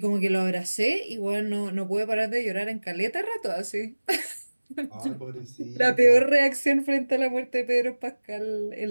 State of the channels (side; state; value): both; inverted; correlation -1.00